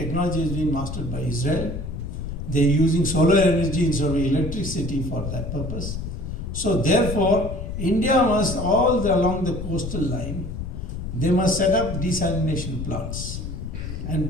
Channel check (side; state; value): left; noise; rumble, 6 dB below the sound